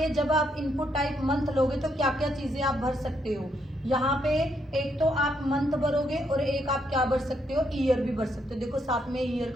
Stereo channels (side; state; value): both; normal; correlation 0.76